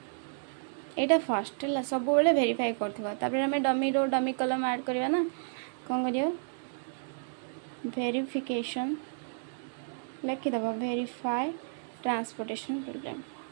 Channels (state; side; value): silent; left; digital silence